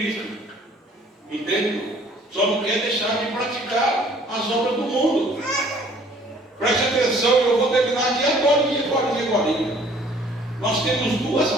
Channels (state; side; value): normal; both; correlation 0.56